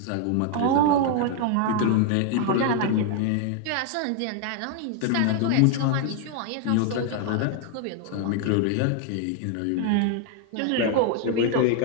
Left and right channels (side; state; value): both; different; correlation 0.00